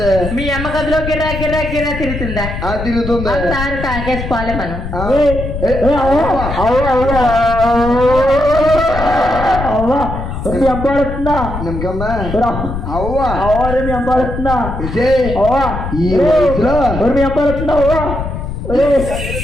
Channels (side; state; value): left; noise; rumble, 6 dB below the sound